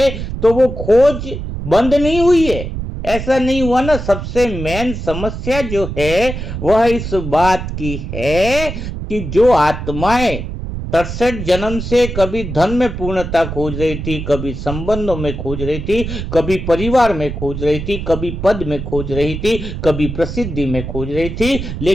तो वो खोज बंद नहीं हुई है। ऐसा नहीं हुआ ना। सबसे मेन समस्या जो है वह इस बात की है कि जो आत्माएं 63 जन्म से कभी धन में पूर्णता खोज रही थी, कभी संबंधों में खोज रही थी, कभी परिवार में खोज रही थी, कभी पद में खोज रही थी, कभी प्रसिद्धि में खोज रही थी,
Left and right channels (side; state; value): right; noise; rumble, 6 dB below the sound